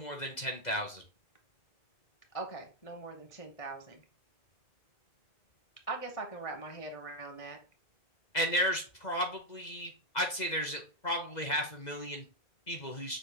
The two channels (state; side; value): late; right; 2.0 ms